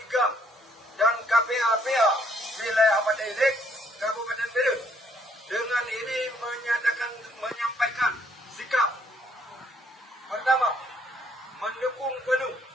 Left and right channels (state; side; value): normal; both; correlation 0.67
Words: GAM dan KPA-PA wilayah Madailik, Kabupaten Bedut dengan ini menyampaikan sikap. Pertama, mendukung penuh